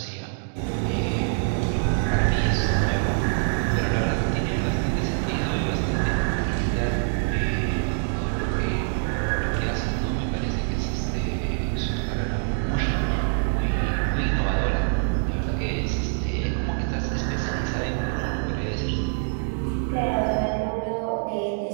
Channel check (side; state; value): left; silent; digital silence